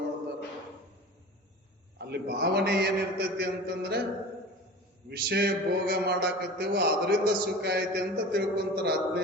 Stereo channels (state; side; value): normal; both; correlation 0.37